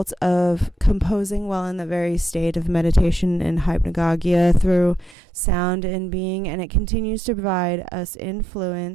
of composing while in the very state of meditation and hypnagogia through sound and being, and it continues to provide us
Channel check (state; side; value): drops out; left; at 5.2 s